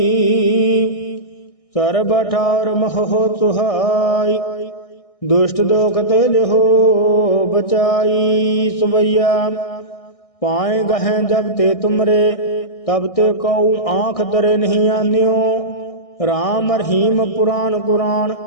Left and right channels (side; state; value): right; late; 1.6 ms